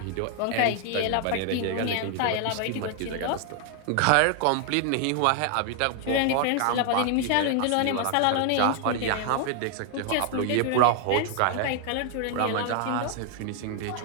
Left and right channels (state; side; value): different; both; correlation 0.00